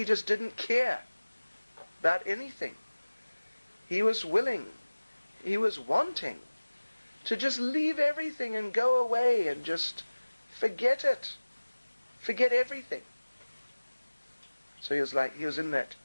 just didn't care about anything. He was willing, he was wanting to just leave everything and go away and just forget it. Forget everything. So he was in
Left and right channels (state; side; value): inverted; both; correlation -1.00